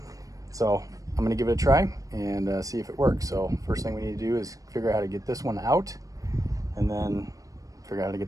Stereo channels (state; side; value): late; left; 0.16 ms